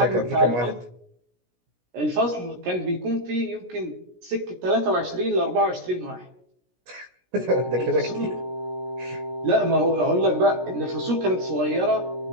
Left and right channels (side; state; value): left; late; 17 ms